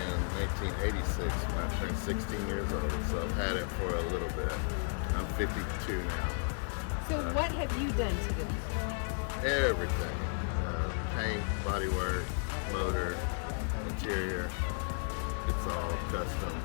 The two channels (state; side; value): silent; right; 55 dB below the other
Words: 1986 when I turned 16 years old, so I've had it for a little bit. I'm 52 now. So what have you done to it? Everything. Paint, bodywork, motor, interior, it's all custom.